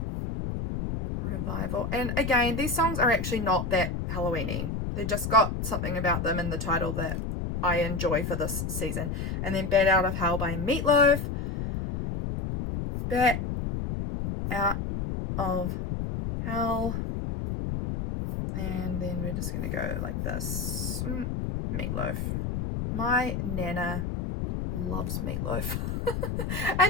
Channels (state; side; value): noise; left; rumble, 3 dB below the sound